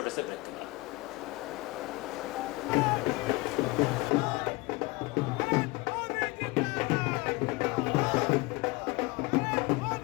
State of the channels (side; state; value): right; quieter; 23.5 dB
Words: से ब्रेक के लिए।